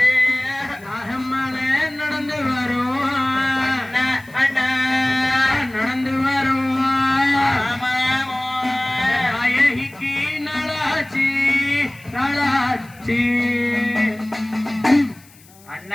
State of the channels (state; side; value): noise; left; hiss, 26 dB below the sound